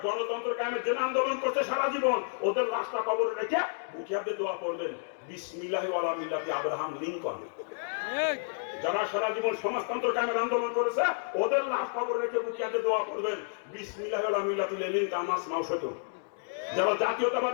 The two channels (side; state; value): right; silent; digital silence